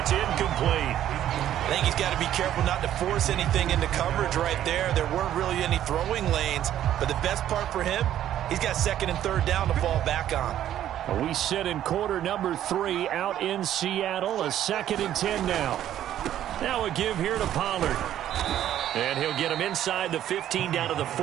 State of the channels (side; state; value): left; quieter; 11.6 dB